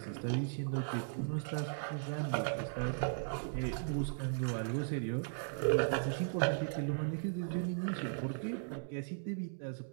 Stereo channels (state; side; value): silent; left; digital silence